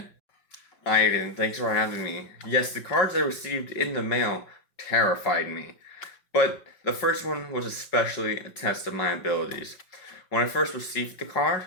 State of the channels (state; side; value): late; right; 5.2 ms